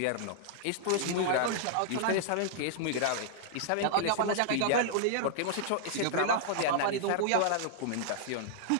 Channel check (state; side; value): different; both; correlation -0.01